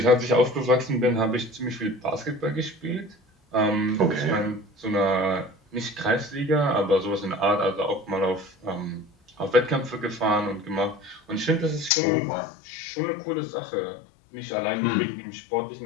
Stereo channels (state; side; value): drops out; right; at 11.9 s